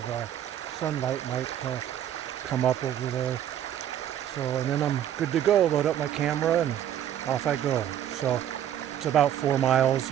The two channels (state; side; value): quieter; left; 10.6 dB